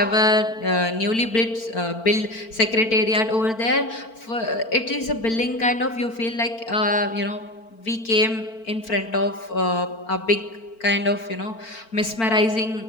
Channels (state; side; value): late; right; 4.5 ms